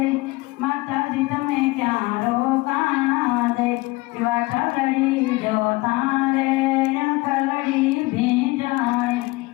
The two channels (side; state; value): right; quieter; 22.3 dB